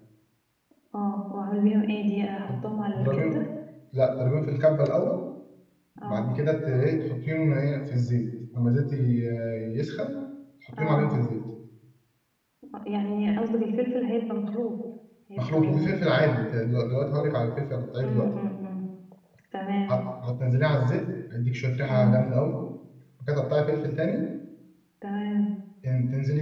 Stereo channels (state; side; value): identical; both; correlation 1.00